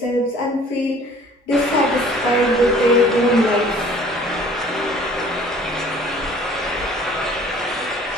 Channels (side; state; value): both; normal; correlation 0.52